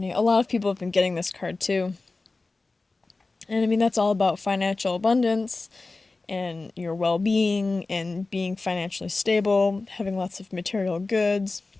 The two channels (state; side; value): quieter; right; 3.5 dB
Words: lot of people have been getting this card too. And that's all about financial abundance and your well-being and being financially stable, having lots of material goods,